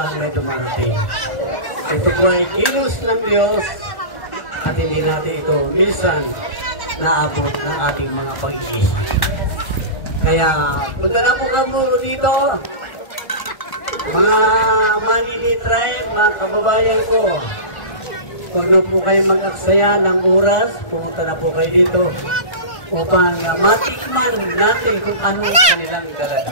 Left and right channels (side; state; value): right; late; 1.4 ms